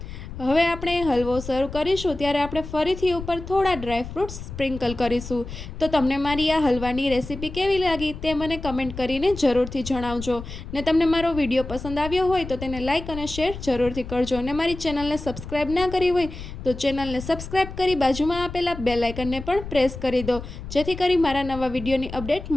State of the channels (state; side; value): noise; left; rumble, 10 dB below the sound